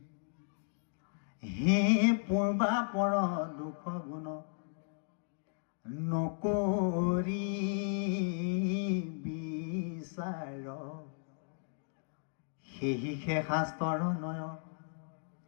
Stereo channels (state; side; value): silent; right; digital silence